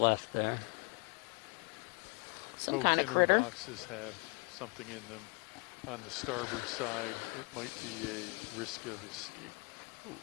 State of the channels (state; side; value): quieter; right; 32.6 dB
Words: there? Both kind of inner critter. boxes have something in them. On the starboard side, it might be a risk of escape. Ooh,